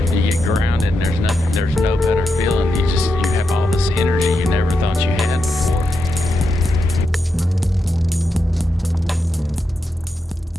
You get grounded and there's nothing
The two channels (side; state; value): both; normal; correlation 0.86